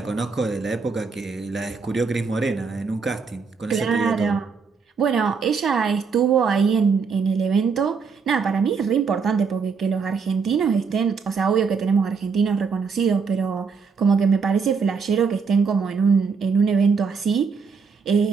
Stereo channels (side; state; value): left; quieter; 5.3 dB